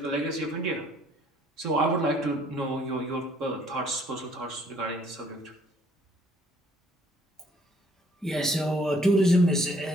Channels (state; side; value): normal; both; correlation 0.62